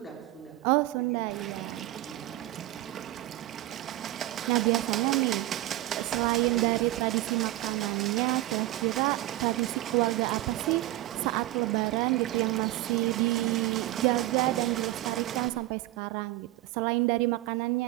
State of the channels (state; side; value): quieter; left; 16.7 dB